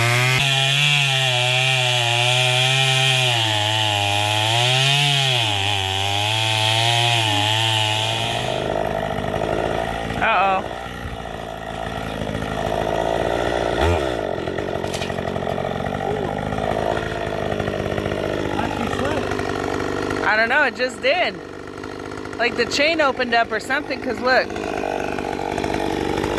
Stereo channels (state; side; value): identical; both; correlation 1.00